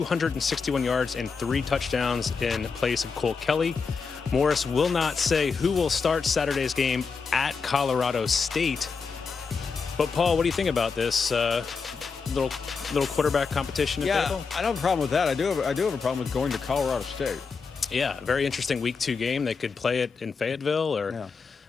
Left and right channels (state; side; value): quieter; right; 5.2 dB